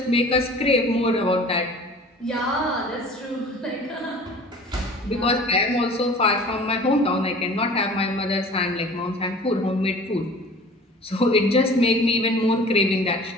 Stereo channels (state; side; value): normal; both; correlation 0.44